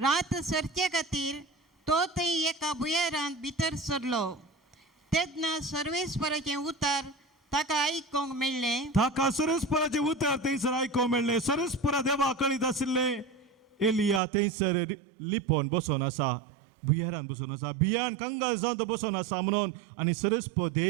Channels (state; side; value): drops out; left; at 14.2 s